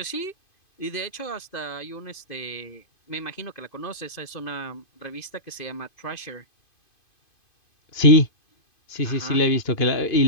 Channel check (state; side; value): late; right; 2.5 ms